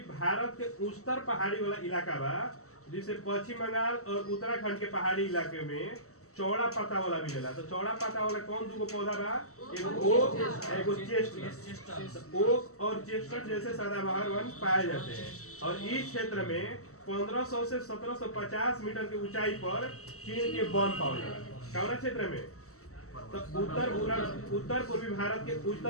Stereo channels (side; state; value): right; late; 0.64 ms